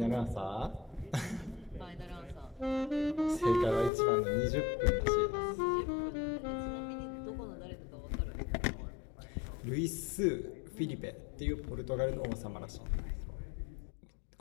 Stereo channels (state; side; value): drops out; right; at 3.9 s